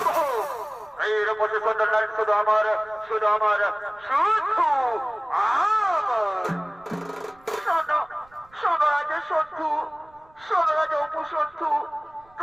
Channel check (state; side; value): noise; right; rumble, 30 dB below the sound